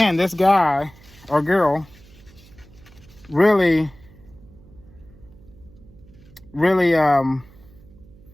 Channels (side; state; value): right; noise; hum, 24 dB below the sound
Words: this guy or girl really